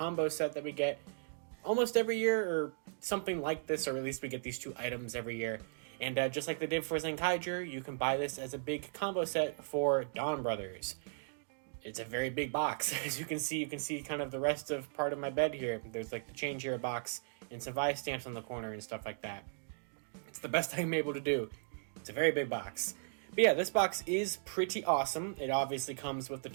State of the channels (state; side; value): silent; left; digital silence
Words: set that we get almost every year, or something like this, or at least we get these two items every year. And just like they did for Zenkaiger, you can buy this as a big combo set for Donbrothers. It's a very big box. As you can see kind of the rest of part of my bed here. There's like the change here box and some vice stamps on the corner and stuff like that. It's the best I'm able to do. It's a very big box. But yeah, this box is pretty awesome. It obviously comes with the